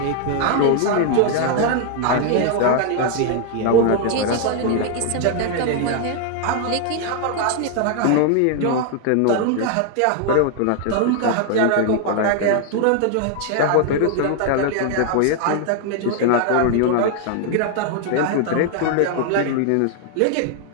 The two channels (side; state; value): both; different; correlation 0.00